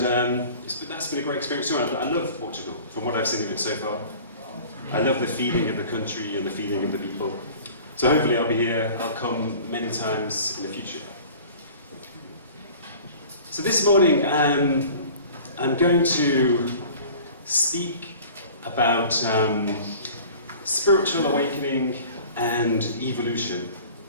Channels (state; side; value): inverted; both; correlation -0.44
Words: been a great experience too. I love Portugal, from what I've seen of it so far. I love the feeling of the country and the feeling of the people. So hopefully I'll be here, I'll come many times in the future. So this morning I'm going to speak about spiritual awakening and evolution.